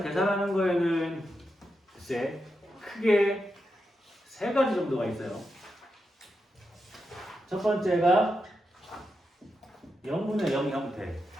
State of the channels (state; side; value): normal; both; correlation 0.86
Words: 계산하는 거에는 글쎄 크게 세 가지 정도가 있어요. 첫 번째가 0분의 0 형태.